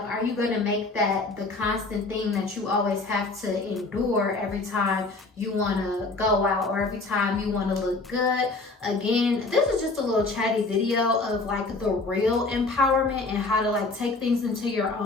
are you going to make that the constant thing that you always have to endure every time you want to go out, or every time you want to look good? Again, this is just a little chatty video of like the real empowerment and how to like take things into your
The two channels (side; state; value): right; quieter; 3.5 dB